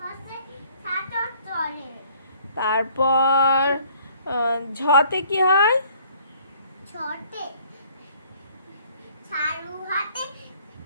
সাথে চলে। তারপর ঝতে কি হয়? ছোটে ছাড়ু হাতে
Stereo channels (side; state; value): both; inverted; correlation -0.59